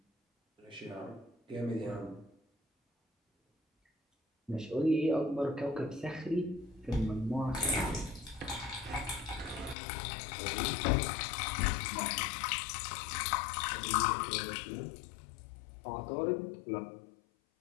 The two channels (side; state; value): right; drops out; at 9.8 s